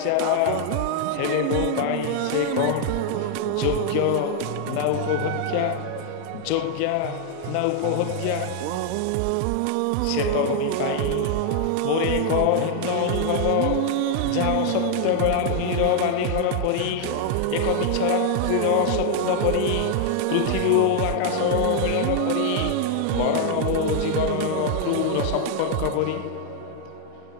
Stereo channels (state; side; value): different; both; correlation 0.00